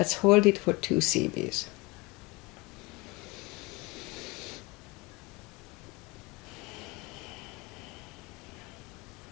hold it for 2 CBs.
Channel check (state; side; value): quieter; right; 24.5 dB